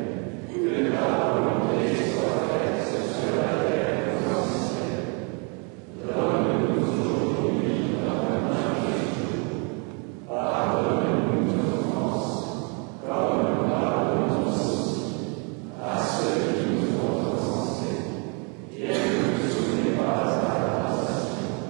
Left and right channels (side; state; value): left; quieter; 35.2 dB